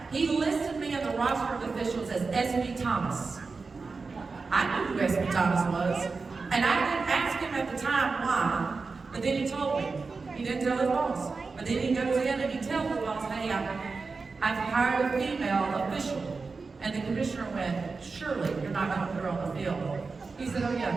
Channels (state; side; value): quieter; left; 4.3 dB